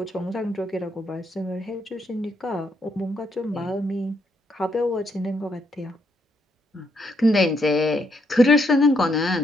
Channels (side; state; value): both; normal; correlation 0.75